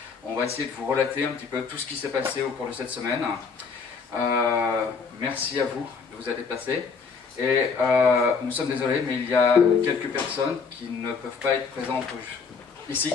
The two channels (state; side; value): quieter; right; 5.3 dB